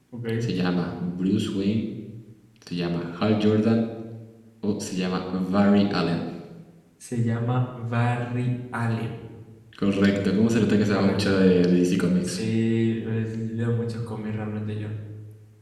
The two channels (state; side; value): identical; both; correlation 1.00